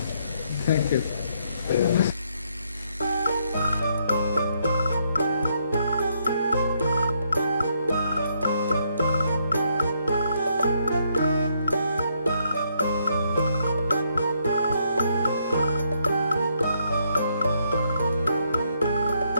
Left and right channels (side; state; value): both; inverted; correlation -0.74